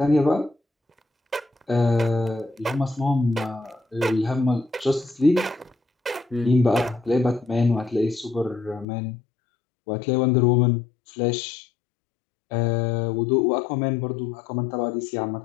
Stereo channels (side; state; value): right; drops out; at 8.8 s